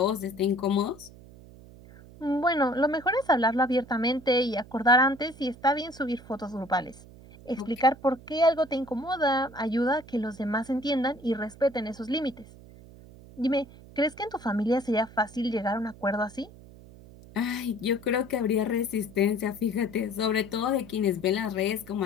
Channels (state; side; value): noise; right; hum, 20 dB below the sound